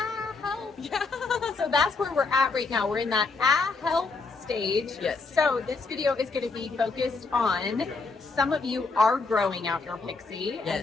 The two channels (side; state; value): right; quieter; 4.1 dB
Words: Yeah. So that's where we're at right now. We're in that help stage. Yes. So this video is going to be focused on some of you are growing out your pixie, and